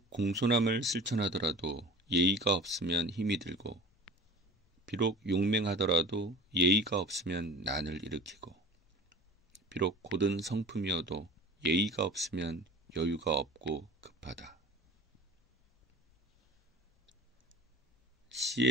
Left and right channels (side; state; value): both; normal; correlation 0.39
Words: 공손함을 실천하더라도 예의가 없으면 힘이 들고, 비록 용맹하더라도 예의가 없으면 난을 일으키고, 비록 고든 성품이어도 예의가 없으면 여유가 없고 급하다.